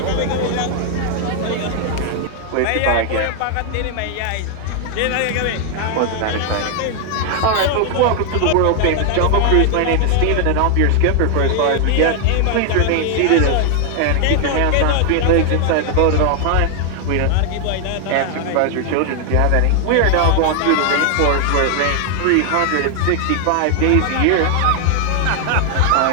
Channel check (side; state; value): both; different; correlation 0.00